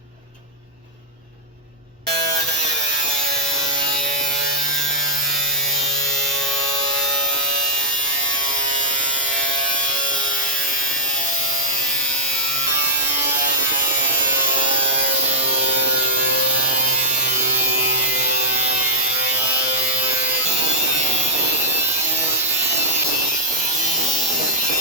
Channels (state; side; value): normal; both; correlation -0.09